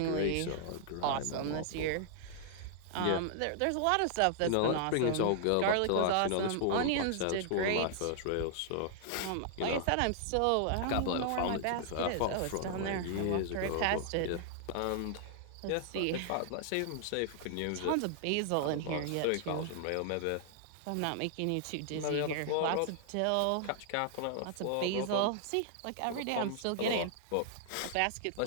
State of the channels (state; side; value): different; both; correlation -0.01